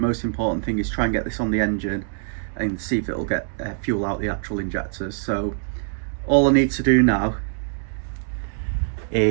important thing is try and get this on the engine and see if it'll get fuel out the actual injectors. So all I need to do now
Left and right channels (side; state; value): left; silent; digital silence